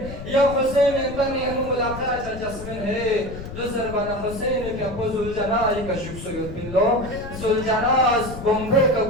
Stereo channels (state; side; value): noise; left; rumble, 11 dB below the sound